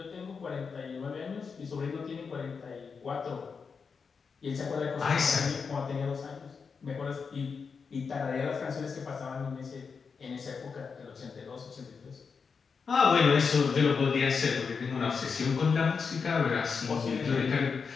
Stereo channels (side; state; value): right; quieter; 5.5 dB